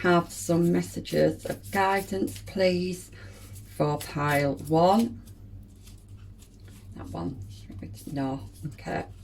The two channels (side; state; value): both; identical; correlation 1.00